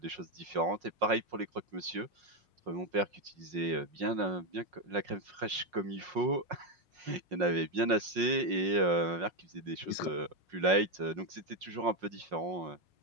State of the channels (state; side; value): late; left; 5.5 ms